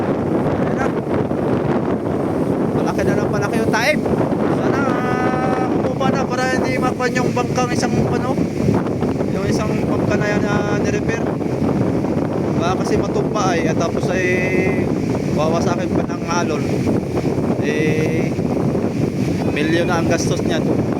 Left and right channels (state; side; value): identical; both; correlation 1.00